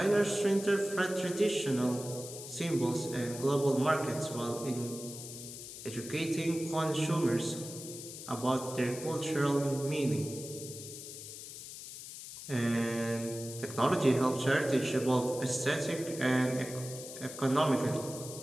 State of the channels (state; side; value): noise; left; hiss, 11 dB below the sound